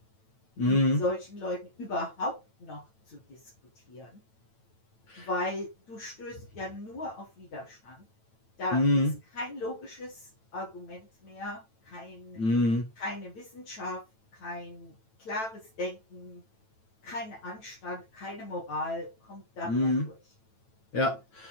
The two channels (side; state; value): right; late; 9.0 ms